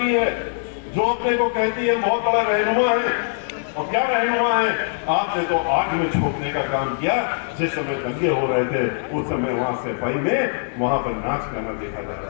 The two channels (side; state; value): right; silent; digital silence